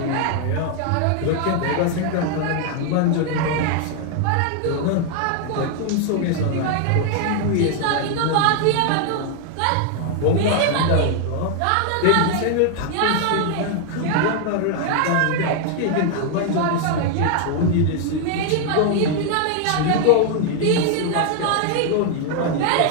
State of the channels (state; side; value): different; both; correlation 0.00